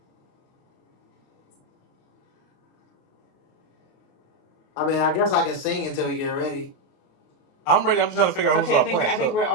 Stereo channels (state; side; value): late; right; 28 ms